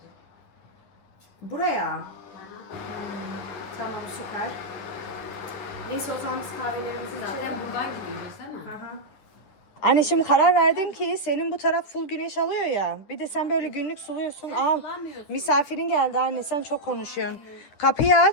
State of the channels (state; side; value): late; right; 9.7 ms